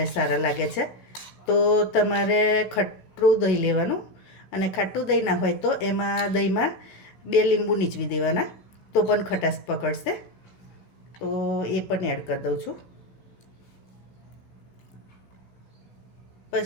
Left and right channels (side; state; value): right; late; 16 ms